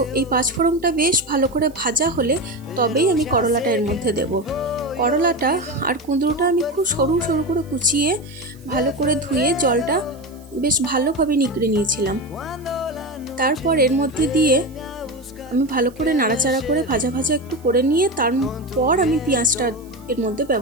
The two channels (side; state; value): right; noise; hiss, 27 dB below the sound